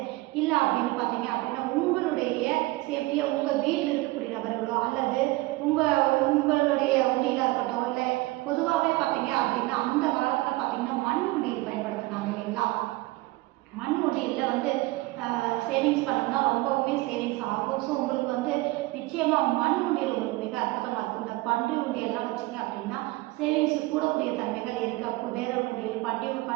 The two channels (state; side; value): quieter; left; 20.7 dB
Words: இல்லை அப்படின்னு பார்த்தீங்க அப்படின்னா உங்களுடைய சேஃப்டியை உங்கள் வீட்டில் இருக்கக்கூடிய நபர்களோ அல்லது உங்களுடைய உண்டியில் இருக்கட்டும், இல்லை பொதுவாகவே பார்த்தீங்க அப்படின்னா அந்த காலத்தில் பார்த்தீங்கன்னா மண் உண்டியல் பயன்படுத்தினாங்க இல்லைங்களா. மண் உண்டியலில் வந்து சேவிங்ஸ் பண்ணோம்னா ரொம்பவுமே சேவிங்ஸ் ஆகும். ஸோ உங்களுக்கு வந்து நிச்சயமாக மண் உண்டியல் ஒரு மிக அற்புதமாக இருக்கும். இந்த பன்றி உண்டியெல்லாம் வச்சிங்க அப்படின்னா சேவிங்ஸ் கூடக்கூடிய தன்மைகள் இருக்குது. அப்போ வேற உண்டியல்